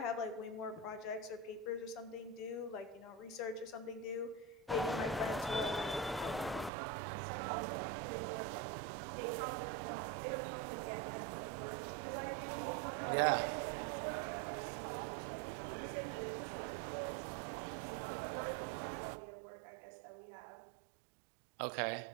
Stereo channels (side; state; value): left; drops out; at 6.7 s